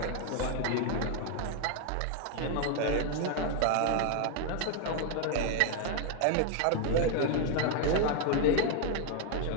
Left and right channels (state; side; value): different; both; correlation 0.00